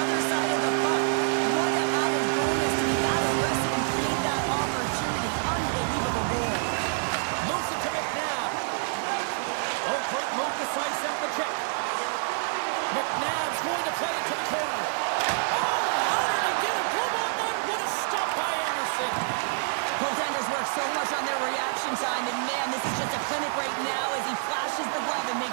side of the puck. What an added bonus to be that aggressive and create that opportunity. Unbelievable goal. Moves it to McNabb. Oh, great move to sidestep the kick. McNabb's going to play it to the corner. Oh, how did he get a glove on that? What a stop by Anderson. Goaltenders work so much on their reaction time, and man, this is just a clinic right now as he flashes the glove and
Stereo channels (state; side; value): silent; left; digital silence